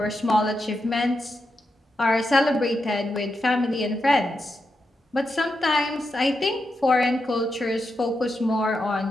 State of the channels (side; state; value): both; normal; correlation 0.86